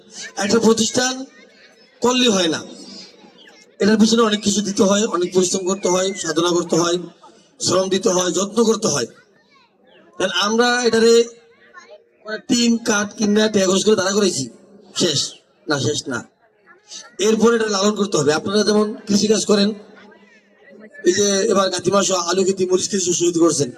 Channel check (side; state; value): both; identical; correlation 1.00